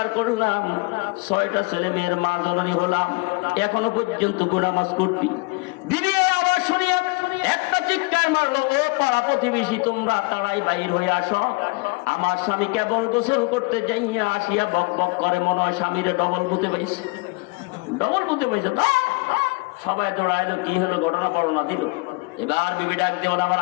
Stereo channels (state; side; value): quieter; right; 28.2 dB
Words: করলাম, 6টা ছেলে মেয়ের মা জননী হলাম, এখনো পর্যন্ত নামাজ করবি। দিদি আবার শুনিয়া একটা চিৎকার মারলো, ও পাড়া প্রতিবেশী তোমরা তারাই বাইর হয়ে আসো। আমার স্বামী কেবল গোসল করতে যাইয়া আসিয়া বক বক করে, মনে হয় স্বামীরে ডবল বুঝতে পাইছে, ডবল বুঝতে পাইছে। তো সবাই দৌড়াইলো, কি হলো ঘটনা বর্ণনা দিল। এবার বিবি ডাক দিয়ে বলে, আমার